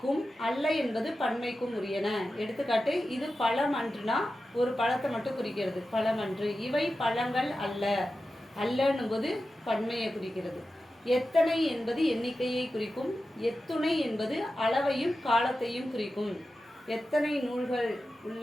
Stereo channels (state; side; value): normal; both; correlation 0.92